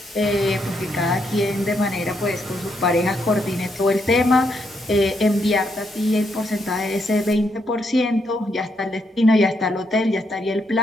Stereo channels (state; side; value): normal; both; correlation 0.77